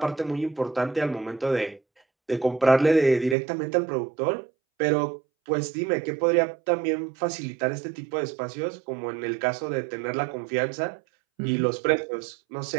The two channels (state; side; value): drops out; left; at 3.4 s